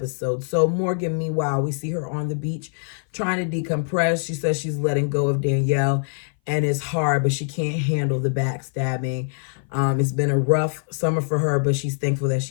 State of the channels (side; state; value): right; silent; 58 dB below the other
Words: So Morgan, meanwhile, we see her on the beach trying to decompress. She says she's letting go of Danielle and it's hard, but she can't handle the backstabbing. It's been a rough summer for her, but she's thankful that